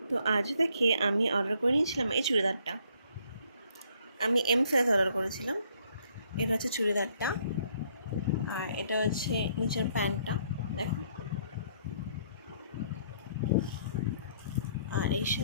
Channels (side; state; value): both; inverted; correlation -0.66